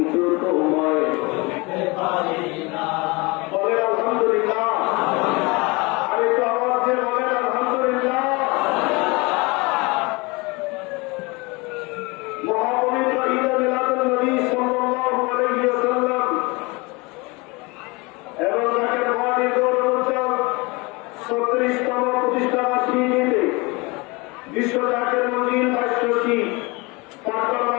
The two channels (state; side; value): quieter; right; 26.1 dB